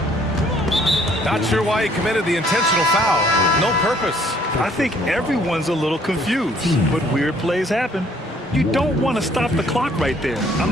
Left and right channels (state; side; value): normal; both; correlation 0.61